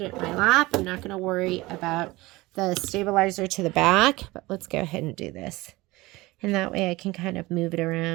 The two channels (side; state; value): left; quieter; 20.6 dB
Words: it in my lap. I'm not gonna worry about the stabilizer to the back, but let's go ahead and do this. And that way I can kind of move it